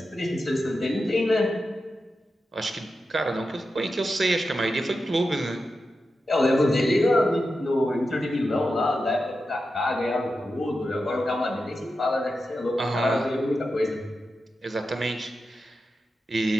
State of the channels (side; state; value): both; normal; correlation 0.90